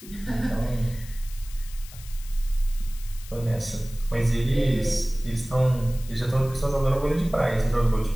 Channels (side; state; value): left; noise; hiss, 18 dB below the sound